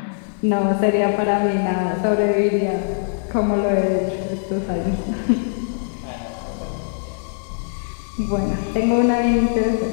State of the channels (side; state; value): right; silent; 57 dB below the other